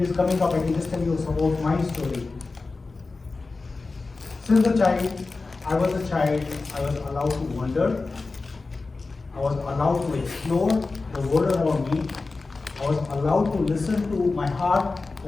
is coming up, I can just tell you some about my story. Since I was a child, I was allowed to wonder. I was allowed to explore the world around me. I was allowed to listen to my heart,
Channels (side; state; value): right; quieter; 3.8 dB